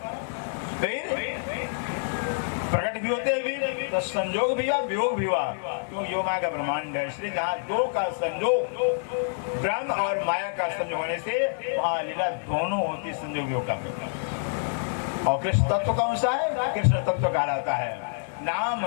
फिर प्रकट भी होते हैं, तो संयोग भी हुआ, वियोग भी हुआ। क्यों? योग माया का ब्रह्मांड है, इसलिए जहाँ 2 का संयोग, ब्रह्म और माया का संयोग होने से वहाँ लीला दोनों होती, संयोग वियोग का। और कृष्ण तत्व कौन सा है? कृष्ण तत्व कहलाता है। नाम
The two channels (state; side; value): silent; right; digital silence